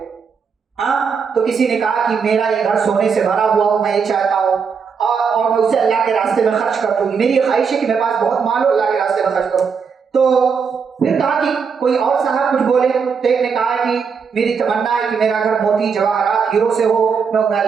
تو کسی نے کہا کہ میرا یہ گھر سونے سے بھرا ہوا ہو، میں یہ چاہتا ہوں اور میں اسے اللہ کے راستے میں خرچ کر دوں گی، میری یہ خواہش ہے کہ میرے پاس بہت مال ہو، اللہ کے راستے میں خرچ کروں۔ تو پھر کہا کہ کوئی اور صاحب کچھ بولے، تو ایک نے کہا کہ میری تمنا ہے کہ میرا گھر موتی جواہرات ہیرو سے ہو، میں انہیں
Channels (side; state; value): left; quieter; 6.0 dB